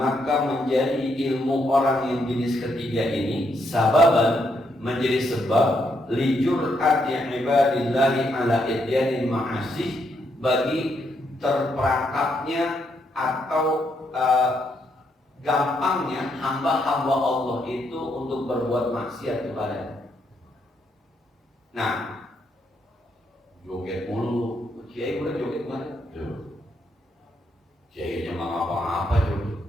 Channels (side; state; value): both; normal; correlation 0.77